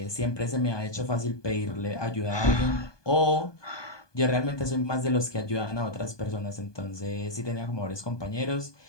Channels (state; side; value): late; right; 1.2 ms